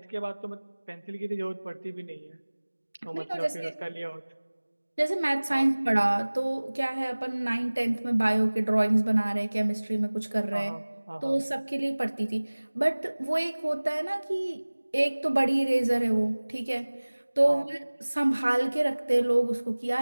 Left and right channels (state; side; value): inverted; both; correlation -1.00